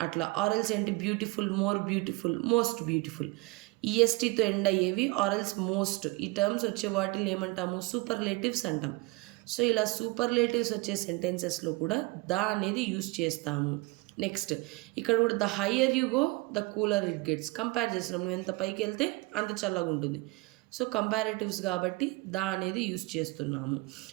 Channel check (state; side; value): quieter; left; 24.1 dB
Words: అట్లా. ఆర్ఎల్స్ ఏంటి, beautiful, more beautiful, most beautiful. ఈఎస్టీతో ఎండ్ అయ్యేవి ఆర్ఎల్స్ మోస్ట్. ఈ టర్మ్స్ వచ్చే వాటిని ఏమంటాము, సూపర్లేటివ్స్ అంటాం. సో ఇలా సూపర్లేటివ్స్ వచ్చే సెంటెన్సెస్లో కూడా ద అనేది యూజ్ చేస్తాము. నెక్స్ట్, ఇక్కడ కూడా the higher you go the cooler it gets. Compare చేస్తున్నాం, నువ్వు ఎంత పైకి వెళ్తే అంత చల్లగా ఉంటుంది. సో కంపారేటివ్స్ కాబట్టి ద అనేది యూజ్ చేస్తున్నాము.